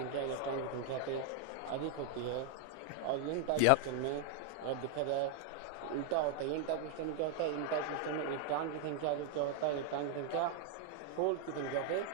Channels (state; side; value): different; both; correlation 0.00